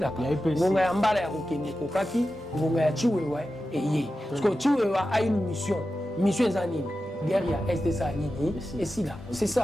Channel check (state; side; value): normal; both; correlation 0.92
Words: Bonga yambala ya kokende kokaki, bonga ya chiwewa et yé. Parce que chiwewa a une mission. Mission zanini. Guerre ya SDSA nini. Et si là, c'est